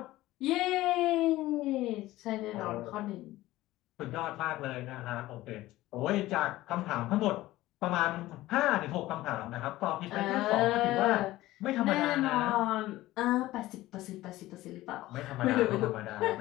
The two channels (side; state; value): right; quieter; 16.8 dB